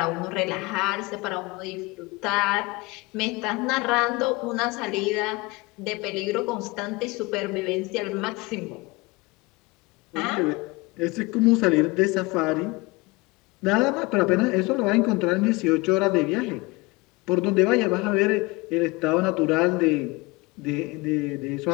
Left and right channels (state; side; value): quieter; right; 24.2 dB